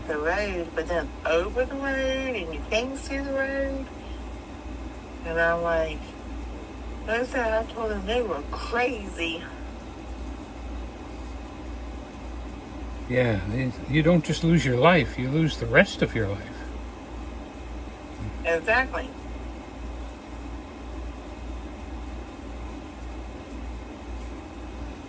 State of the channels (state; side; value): identical; both; correlation 1.00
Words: the road, but then over the road, and you can't see the road. And I'm like, I told them they were crazy. Yeah, you don't just lose your life, you lose the rest of your life. Exactly.